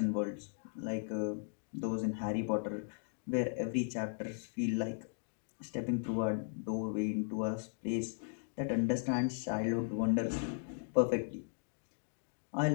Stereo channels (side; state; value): right; silent; digital silence